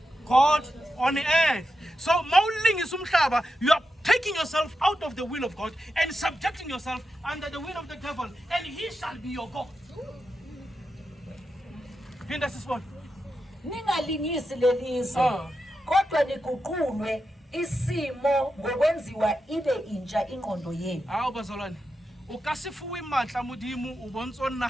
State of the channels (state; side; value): normal; both; correlation 0.88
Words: God on the earth. So mauling is umhlaba, you are taking yourself out of the will of God and subjecting yourself under the will of the devil. devil, and he shall be your God. Phinda sisibone. Ningalingisi lelizwe. Kodwa niguqulwe isimo ngokwenziwa ibe intsha ingqondo yenu. Hawu bazalwane. O ka se fuwe matla modimo o bontso